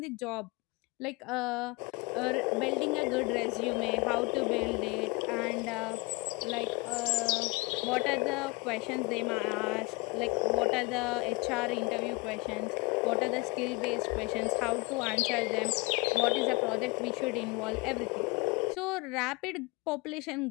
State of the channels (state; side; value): quieter; right; 25.8 dB